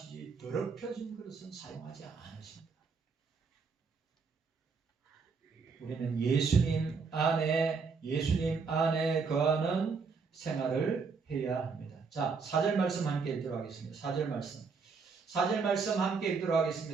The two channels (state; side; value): quieter; left; 5.1 dB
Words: 더럽혀진 그릇은 사용하지 않으십니다. 우리는 예수님 안에 거하는 생활을 해야 합니다. 자, 4절 말씀 함께 읽도록 하겠습니다. 4절 말씀 함께 읽도록